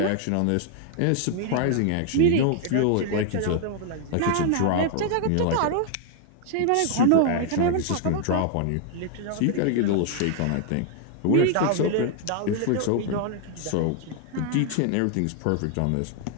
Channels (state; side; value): different; both; correlation 0.00